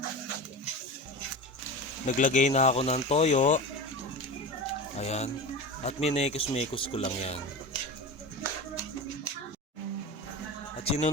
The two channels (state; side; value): normal; both; correlation 0.27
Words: Naglagay na ako ng toyo. Ayan. At minekos-mekos ko lang yan. At